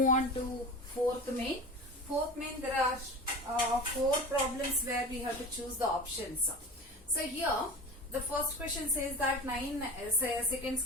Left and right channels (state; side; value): normal; both; correlation 0.32